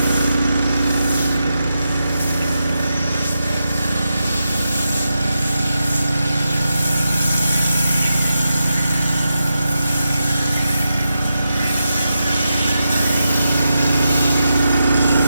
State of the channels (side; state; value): both; inverted; correlation -0.88